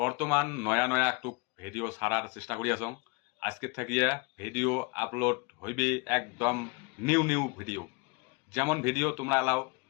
নয়া নয়া একটু ভিডিও ছাড়ার চেষ্টা করি আছো। আজকে থাকিয়া ভিডিও আপলোড হইবে একদম নিউ নিউ ভিডিও, যেমন ভিডিও তোমরা এলাও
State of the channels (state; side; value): quieter; right; 29.0 dB